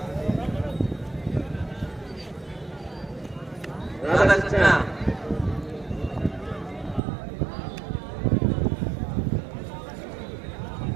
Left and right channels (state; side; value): drops out; left; at 7.0 s